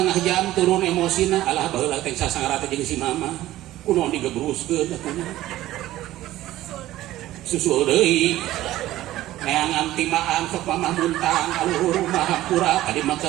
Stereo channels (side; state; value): left; quieter; 15.2 dB